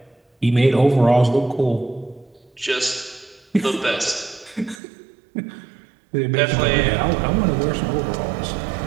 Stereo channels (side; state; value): left; drops out; at 4.8 s